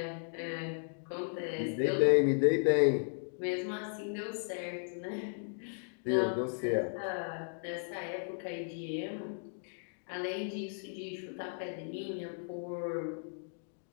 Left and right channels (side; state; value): right; silent; digital silence